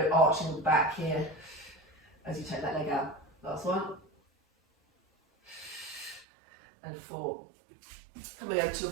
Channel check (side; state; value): left; drops out; at 6.2 s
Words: arching the back here as you take that leg out. Last one. And 4. Coming over to your